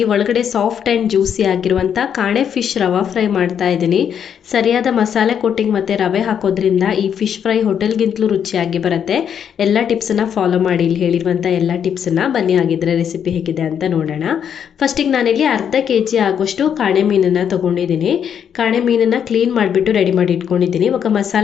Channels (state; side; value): quieter; right; 8.3 dB